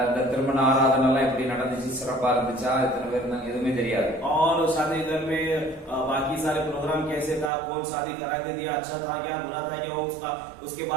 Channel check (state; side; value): drops out; left; at 7.5 s